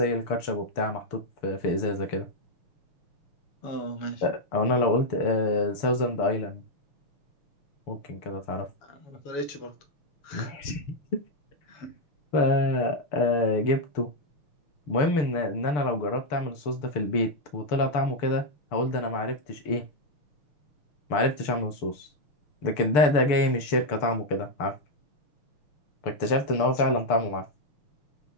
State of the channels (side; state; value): right; late; 6.7 ms